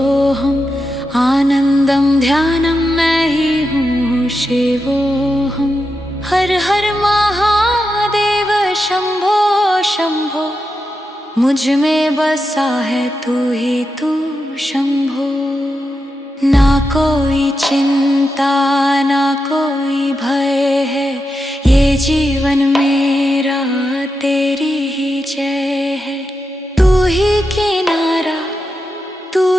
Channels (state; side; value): normal; both; correlation 0.88